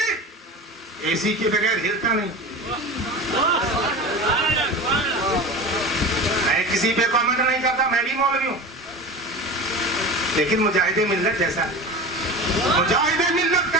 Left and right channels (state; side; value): normal; both; correlation 0.31